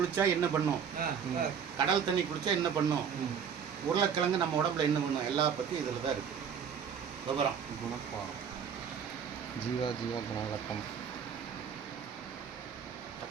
என்ன பண்ணும், கடல் தண்ணி குளிச்சா என்ன பண்ணும், உருளைக்கிழங்கு நம்ம உடம்புல என்ன பண்ணும், எல்லா பத்தி இதுல தான் இருக்கு விவரம். குணப்பாடம், ஜீவா குணவிளக்கம்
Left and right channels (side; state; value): left; quieter; 7.4 dB